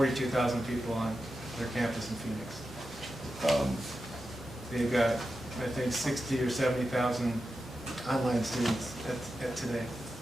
people on their campus in Phoenix. They've got, I think, 60 or 70,000 online students at today.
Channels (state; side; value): normal; both; correlation 0.90